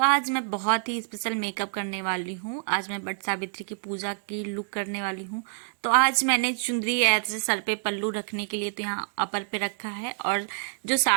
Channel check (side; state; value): left; silent; digital silence